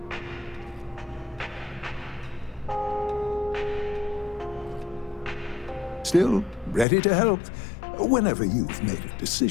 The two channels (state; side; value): drops out; right; at 6.9 s